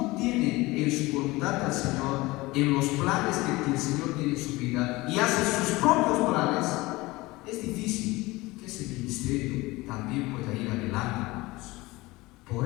tiene en su voluntad al Señor, en los planes que el Señor tiene en su vida, y hace sus propios planes, es difícil que ese ministerio también pueda ir adelante, hermanos.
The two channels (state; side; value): quieter; right; 21.0 dB